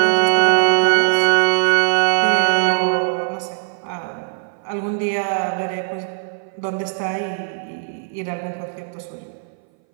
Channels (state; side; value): silent; left; 61 dB below the other